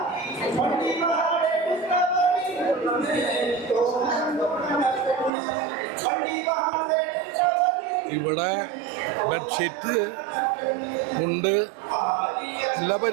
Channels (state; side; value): drops out; left; at 5.3 s